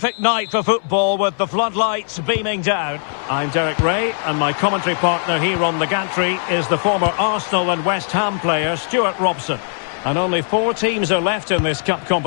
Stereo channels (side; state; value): right; silent; 67 dB below the other